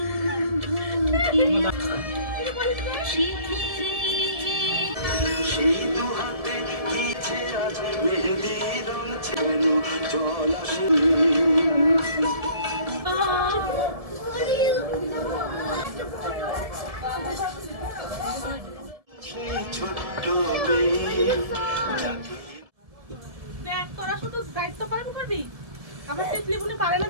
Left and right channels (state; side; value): late; left; 1.6 ms